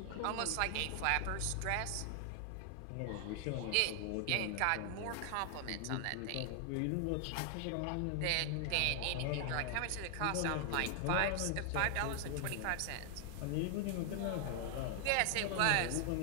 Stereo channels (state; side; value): different; both; correlation 0.00